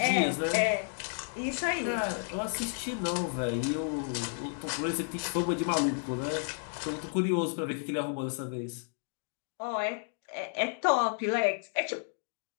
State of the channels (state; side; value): silent; right; 56 dB below the other